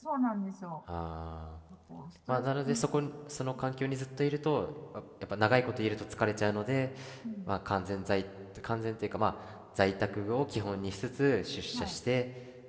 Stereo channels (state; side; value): identical; both; correlation 1.00